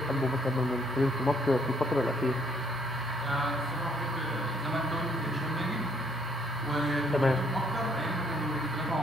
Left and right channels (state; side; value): normal; both; correlation 0.66